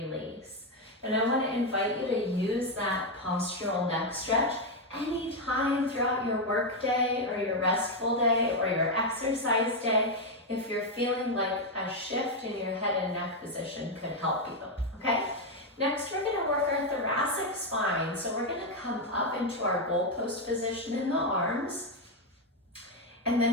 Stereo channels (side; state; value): both; normal; correlation 0.04